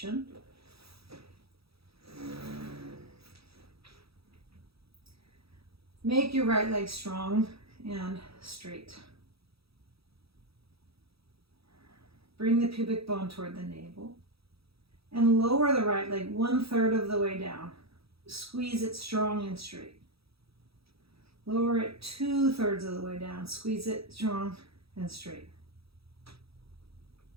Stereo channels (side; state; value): left; late; 0.77 ms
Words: Make your right leg strong and straight. Bring the pubic bone toward the navel and lower the right leg 1/3 of the way down. Squeeze it strong and straight. Lower it 2/3 of the way down. Squeeze it strong and straight.